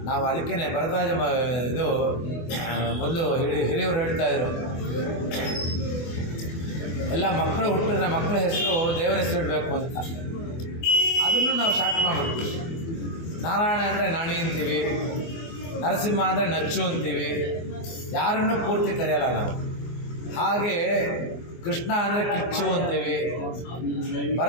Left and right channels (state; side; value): late; right; 24 ms